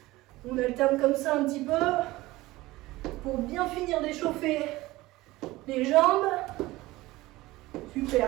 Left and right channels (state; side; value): quieter; left; 18.9 dB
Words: On alterne comme ça un petit peu. Pour bien finir d'échauffer les jambes.